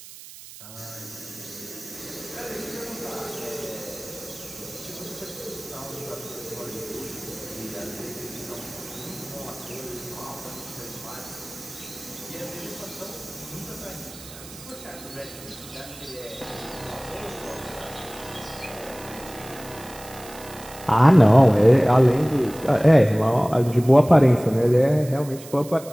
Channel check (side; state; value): right; noise; hiss, 17 dB below the sound